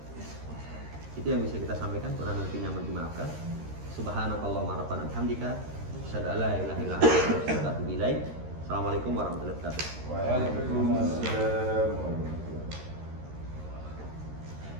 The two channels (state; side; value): late; left; 13 ms